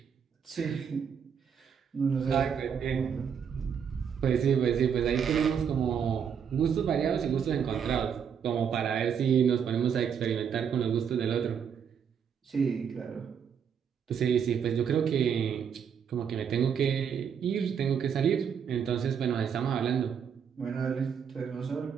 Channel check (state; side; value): quieter; left; 7.5 dB